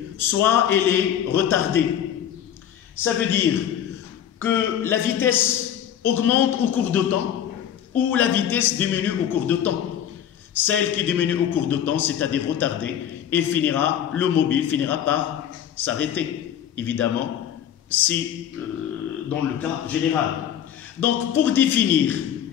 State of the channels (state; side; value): quieter; right; 9.8 dB